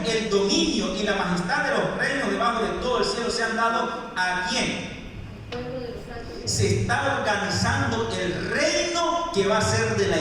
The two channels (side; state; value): both; identical; correlation 1.00